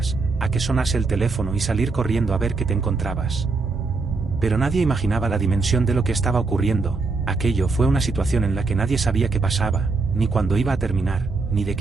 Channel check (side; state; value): left; quieter; 4.0 dB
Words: a que sonase el teléfono y salir corriendo a ver qué te encontrabas. Pero nadie imaginaba la dimensión de lo que estaba ocurriendo. Aquello fue una situación en la que nadie sabía qué pasaba, ni cuándo iba a terminar, ni de